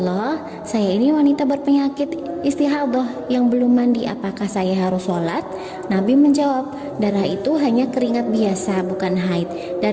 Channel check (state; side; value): identical; both; correlation 1.00